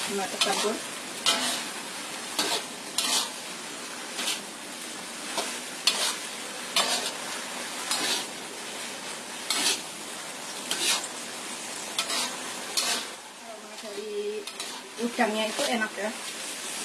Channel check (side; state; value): both; identical; correlation 1.00